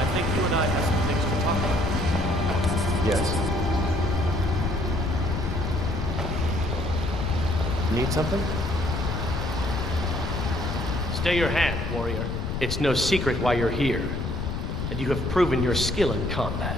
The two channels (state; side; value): noise; left; rumble, 3 dB below the sound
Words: think you and I have some things to talk about. Yes. Need something? Stay your hand, warrior. It's no secret why you're here, and you have proven your skill in